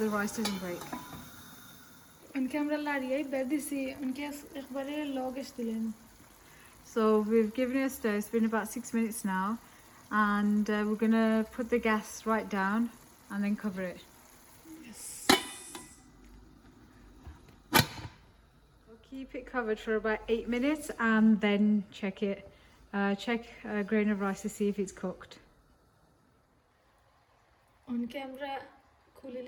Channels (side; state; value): both; identical; correlation 1.00